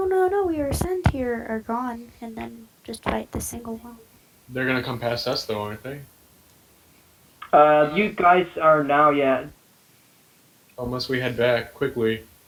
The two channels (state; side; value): identical; both; correlation 1.00